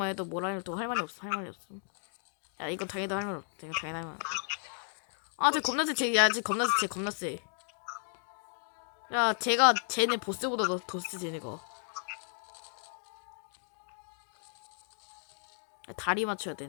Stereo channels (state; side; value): silent; right; digital silence